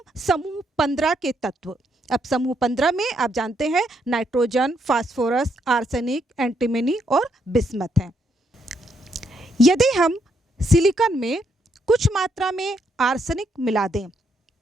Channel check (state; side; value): normal; both; correlation 0.75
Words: समूह 15 के तत्व, अब समूह 15 में आप जानते हैं नाइट्रोजन, फास्फोरस, आर्सेनिक, एंटीमनी और बिस्मथ हैं। यदि हम सिलिकॉन में कुछ मात्रा में आर्सेनिक मिला दें